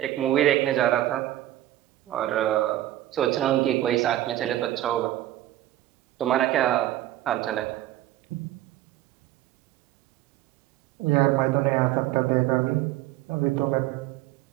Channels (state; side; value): quieter; left; 14.4 dB